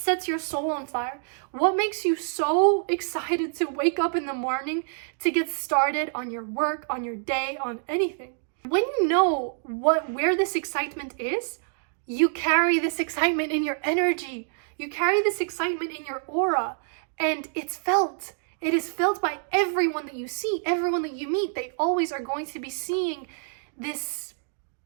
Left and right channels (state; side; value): silent; left; digital silence